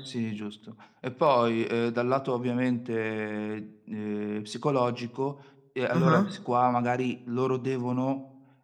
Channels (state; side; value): identical; both; correlation 1.00